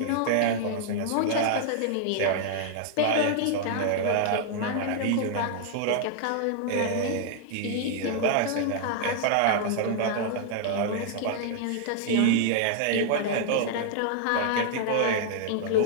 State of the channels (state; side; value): different; both; correlation 0.00